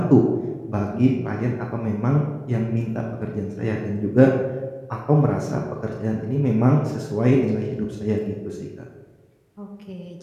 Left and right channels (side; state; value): both; identical; correlation 1.00